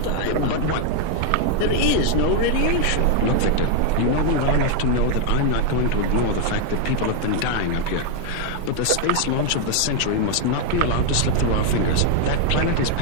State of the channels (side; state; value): both; different; correlation 0.01